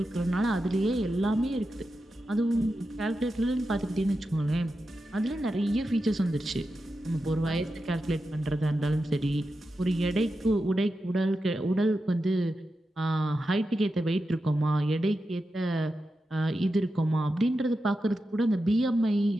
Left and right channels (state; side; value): normal; both; correlation 0.90